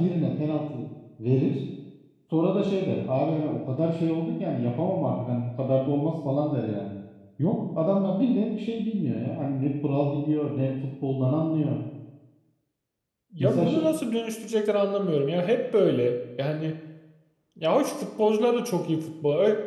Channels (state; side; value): identical; both; correlation 1.00